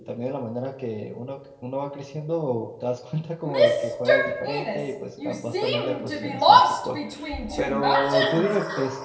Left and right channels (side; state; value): both; identical; correlation 1.00